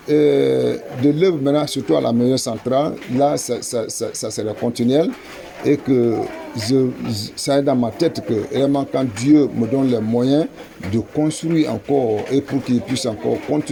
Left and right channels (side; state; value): both; identical; correlation 1.00